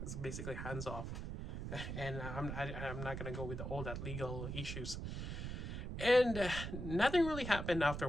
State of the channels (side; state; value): right; noise; rumble, 5 dB below the sound